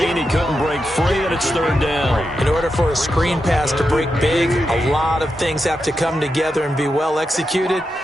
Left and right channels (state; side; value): normal; both; correlation 0.87